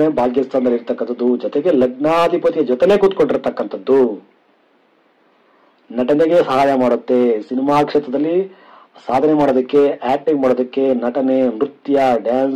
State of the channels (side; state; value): both; identical; correlation 1.00